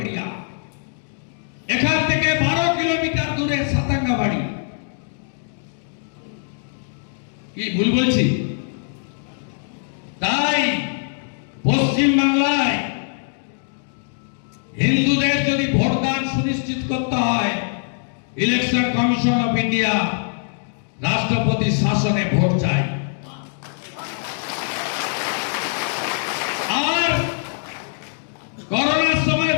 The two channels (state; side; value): silent; right; digital silence